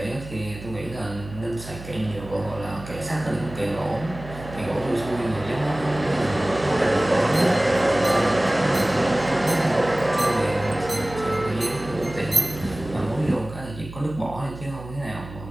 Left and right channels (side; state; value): right; noise; hum, 14 dB below the sound